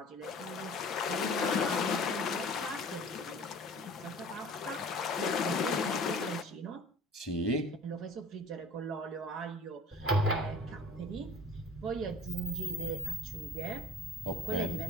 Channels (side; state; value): both; normal; correlation 0.45